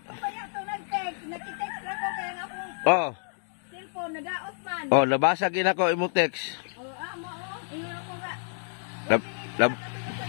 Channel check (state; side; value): silent; right; digital silence